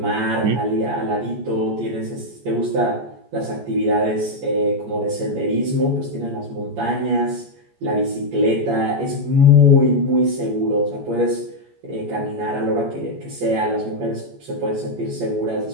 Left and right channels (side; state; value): left; late; 14 ms